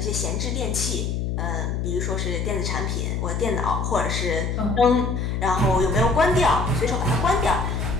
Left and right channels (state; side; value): noise; left; hum, 1 dB below the sound